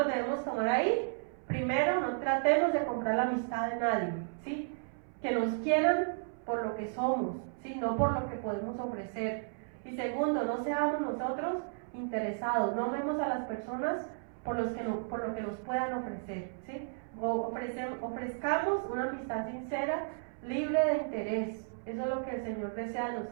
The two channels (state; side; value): silent; left; 55 dB below the other